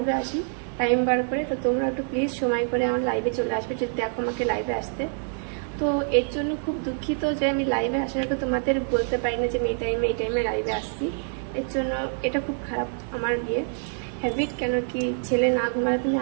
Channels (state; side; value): silent; left; 61 dB below the other